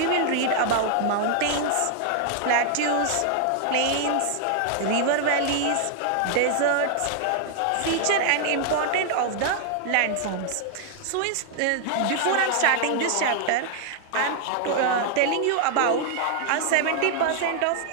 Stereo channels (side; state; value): both; different; correlation 0.00